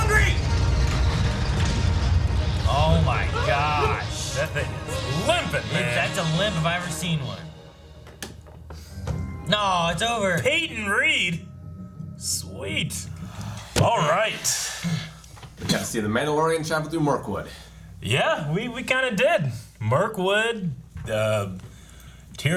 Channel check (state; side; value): identical; both; correlation 1.00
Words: Oh my gosh. That thing is limping, man. That's a limp if I ever seen one. No, it's over. Peyton Reed. Sweet. All right. We got to see the Mandalorian travel through Mirkwood. Yeah, we kind of did. Mirkwood,